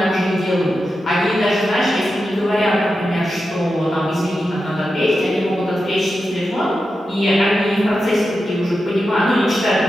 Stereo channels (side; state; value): both; normal; correlation 0.90